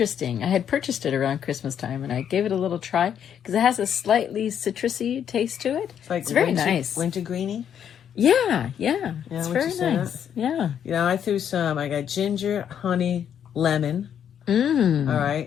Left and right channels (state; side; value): quieter; right; 8.9 dB